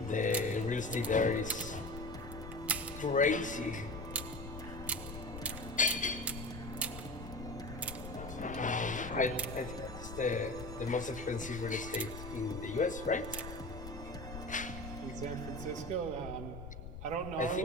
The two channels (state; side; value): noise; left; rumble, 10 dB below the sound